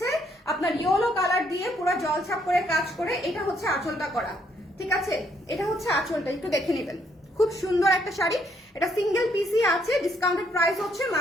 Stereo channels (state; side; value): normal; both; correlation 0.71